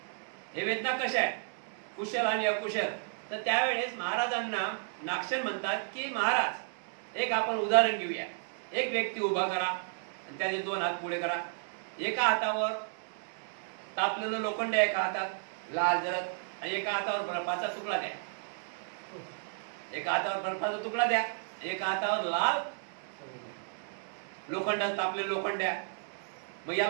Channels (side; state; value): left; silent; digital silence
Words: हे वेदना कशा आहेत, कुशल आणि अकुशल. तर त्यावेळेस महाराजांना नागसेन म्हणतात की महाराज, एक आपण उदाहरण घेऊया. एक व्यक्ती उभा करा आणि त्याचे 2 हात पुढे करा. एका हातावर तापलेलं लोखंड, एका हातात लाल जरद, आणि एका हातावर बर्फाचा तुकडा द्या. एका हातावर बर्फाचा तुकडा द्या, एका हातावर लाल लोखंड, तापलेलं लोखंड द्या. मग